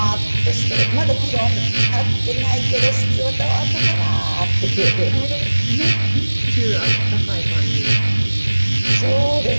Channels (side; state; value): both; inverted; correlation -1.00